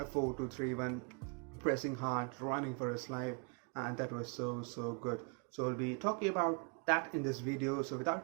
4-2-3-1, pressing hard, running for his life, and that was so good. So we'll be talking about that in this video. So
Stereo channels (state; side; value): quieter; left; 35.2 dB